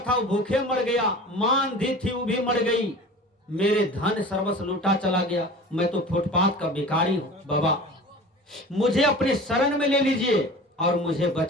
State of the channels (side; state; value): both; normal; correlation 0.38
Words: वो भूखे मर गया, मां अंधी थी वो भी मर गई, मेरे धन सर्वस्व लूटा चला गया, मैं तो फुटपाथ का भिखारी हूं, बाबा मुझे अपने शरण में ले लीजिए और मुझे